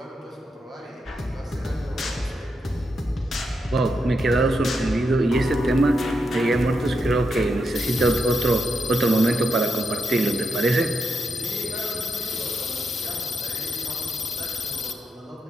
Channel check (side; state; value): both; normal; correlation 0.84